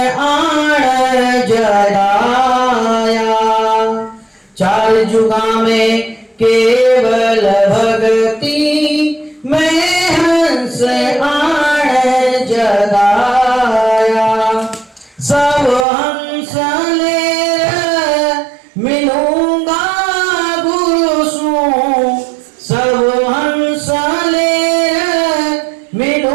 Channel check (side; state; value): left; drops out; at 15.9 s